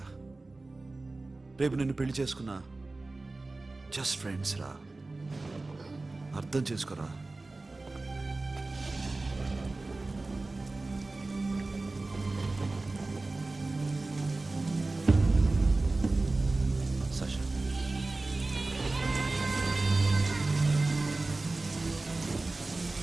రేపు నిన్ను పెళ్లి చేసుకున్నా జస్ట్ ఫ్రెండ్స్ రా. అర్థం చేసుకోరా. సాషా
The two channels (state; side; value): quieter; left; 3.2 dB